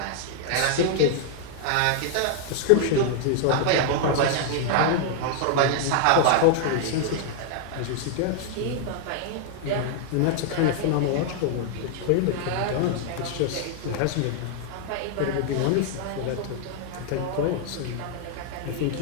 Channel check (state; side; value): different; both; correlation 0.00